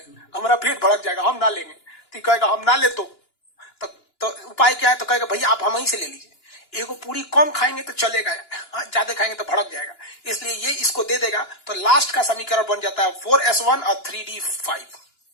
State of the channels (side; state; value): right; late; 2.9 ms